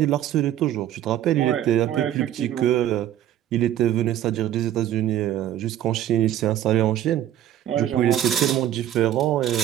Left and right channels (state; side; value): quieter; left; 11.9 dB